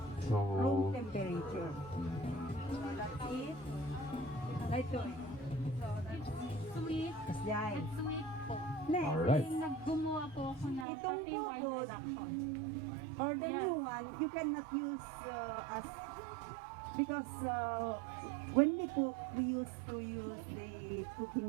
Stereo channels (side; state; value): left; drops out; at 10.9 s